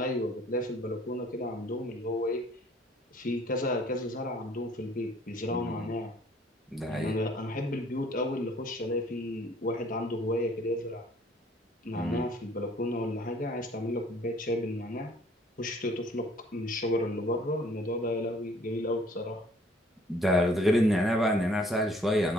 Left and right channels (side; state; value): both; normal; correlation 0.57